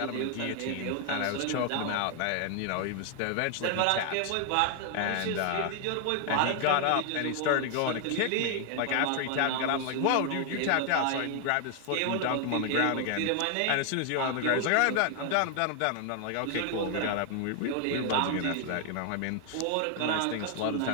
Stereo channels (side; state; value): both; different; correlation 0.00